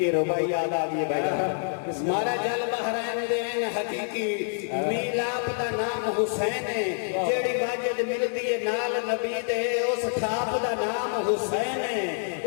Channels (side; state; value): right; silent; digital silence